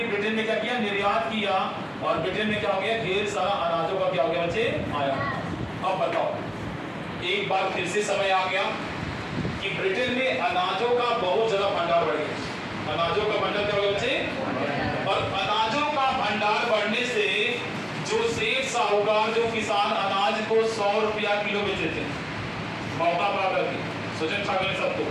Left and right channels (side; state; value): both; identical; correlation 1.00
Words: ब्रिटेन में क्या किया, निर्यात किया, और ब्रिटेन में क्या हो गया, ढेर सारा अनाजों का क्या हो गया बच्चे, आयात। अब बताओ, एक बार फिर से समय आ गया कि ब्रिटेन में अनाजों का बहुत ज्यादा भंडार बढ़ गया। अनाजों का भंडार क्या हो गया बच्चे, और अनाजों का भंडार बढ़ने से जो सेठ साहूकार, जो किसान अनाज को 100 रुपया किलो बेचते थे, मौका पा करके सोचें ठग ले सबको,